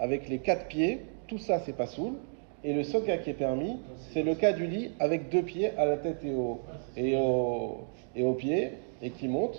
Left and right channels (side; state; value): left; silent; digital silence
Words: les 4 pieds, tout ça c'est pas soul. Et le seul cas qui est permis, c'est le cas du lit avec 2 pieds à la tête et aux pieds, et qui